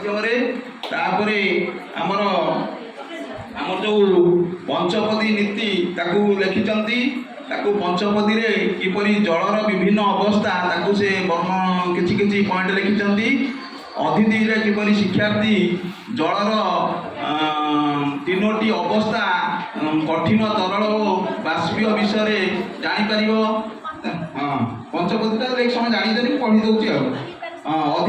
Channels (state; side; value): identical; both; correlation 1.00